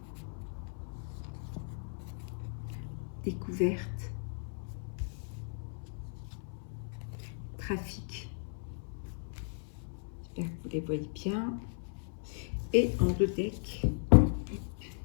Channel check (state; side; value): silent; right; 54 dB below the other